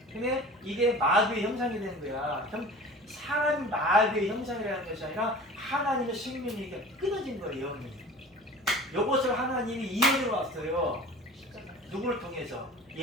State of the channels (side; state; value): both; normal; correlation 0.40